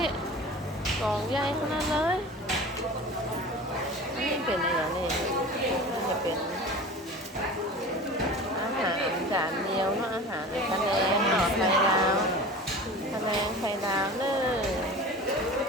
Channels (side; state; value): both; normal; correlation 0.36